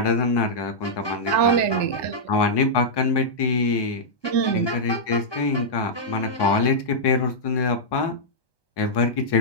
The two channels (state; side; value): late; right; 1.2 ms